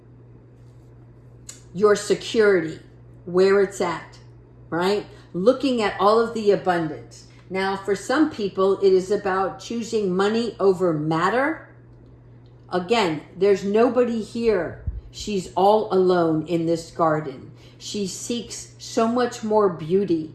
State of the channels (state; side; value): identical; both; correlation 1.00